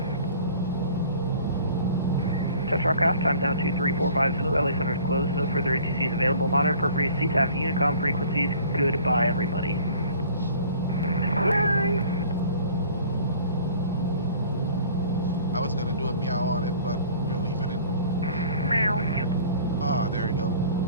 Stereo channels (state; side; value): inverted; both; correlation -0.49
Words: Touch aircraft, time down 2345 Zulu, LA Center is closed, no further ATCs available, monitor appropriate CTAF Unicom frequencies, goodbye everybody. Bye! I was gonna do a meow on it, but we're leaving it. Meow. Ah, there you go.